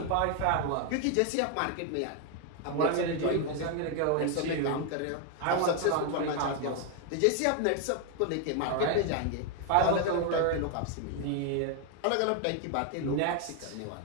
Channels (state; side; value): different; both; correlation 0.01